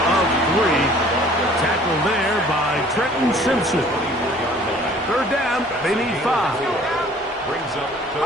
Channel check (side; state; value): both; normal; correlation 0.52